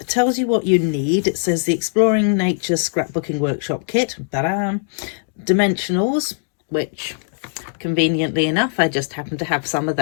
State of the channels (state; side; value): silent; right; digital silence